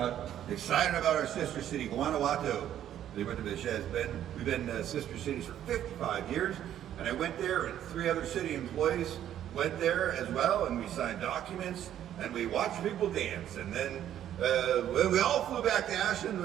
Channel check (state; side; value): quieter; left; 11.0 dB